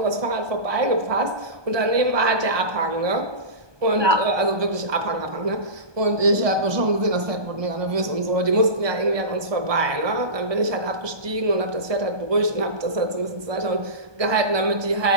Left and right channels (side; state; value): left; late; 1.2 ms